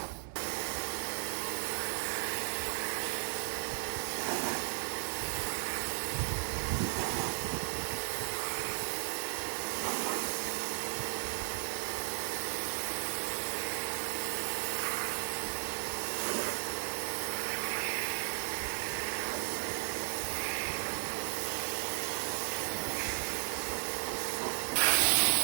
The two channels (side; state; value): left; silent; digital silence